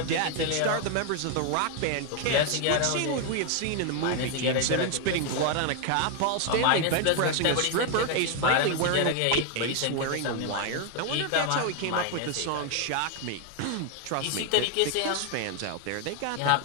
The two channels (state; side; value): different; both; correlation 0.00